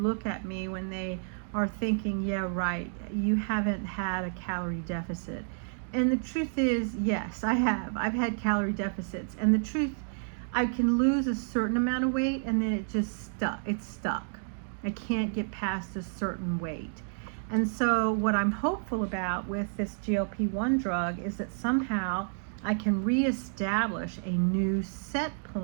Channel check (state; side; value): silent; left; digital silence